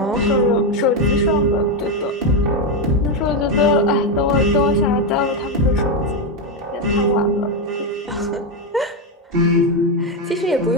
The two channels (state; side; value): normal; both; correlation 0.07